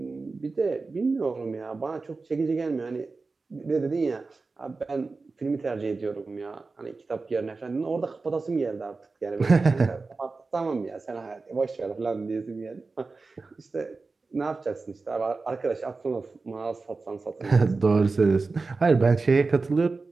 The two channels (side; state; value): left; quieter; 3.9 dB